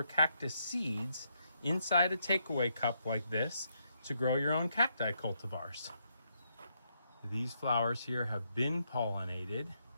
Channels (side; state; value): both; inverted; correlation -0.78